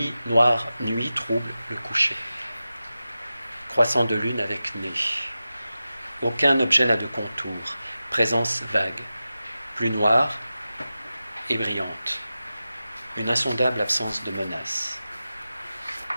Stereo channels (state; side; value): inverted; both; correlation -0.94